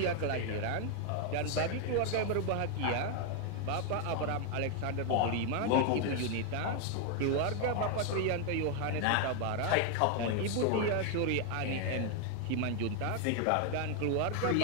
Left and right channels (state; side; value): different; both; correlation 0.01